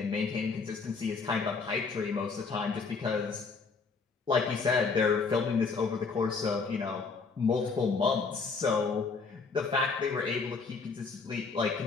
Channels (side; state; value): right; quieter; 4.6 dB